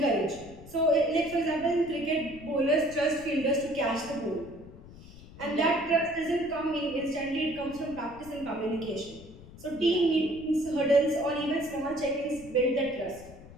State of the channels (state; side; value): noise; left; rumble, 18 dB below the sound